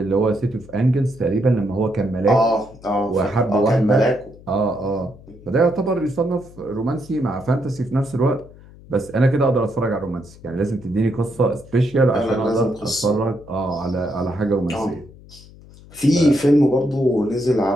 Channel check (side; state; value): left; noise; hum, 21 dB below the sound